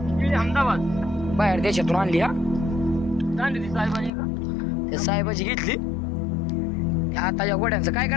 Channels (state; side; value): drops out; right; at 4.1 s